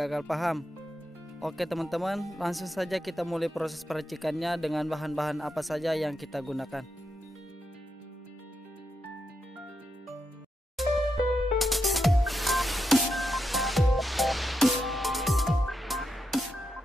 paham. Oke teman-teman, langsung saja kita mulai proses peracikannya dengan bahan-bahan apa saja yang kita gunakan.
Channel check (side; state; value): both; normal; correlation 0.85